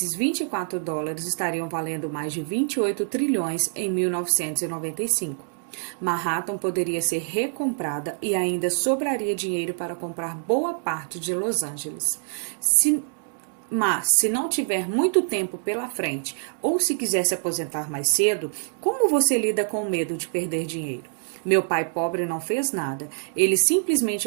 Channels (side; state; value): left; silent; digital silence